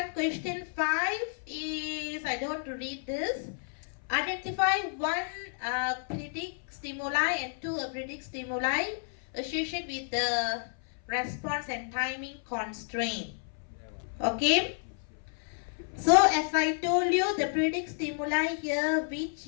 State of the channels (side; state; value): right; silent; 57 dB below the other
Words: question 5 is, I don't want to read this. Identify one predict stimuli and two predict stimuli associated with the response and timing constraint. Okay. So as I told you, the predict stimuli here, which